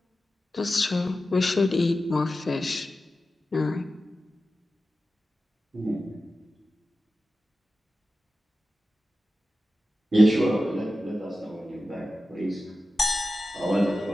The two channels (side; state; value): both; normal; correlation 0.93